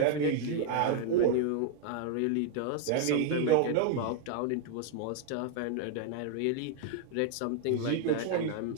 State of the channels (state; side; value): different; both; correlation 0.00